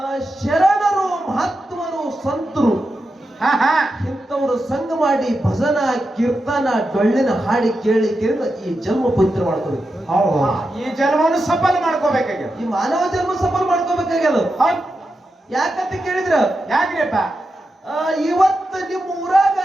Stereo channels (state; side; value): normal; both; correlation 0.89